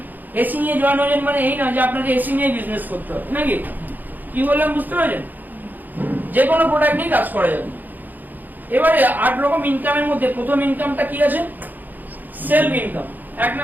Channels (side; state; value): left; late; 0.085 ms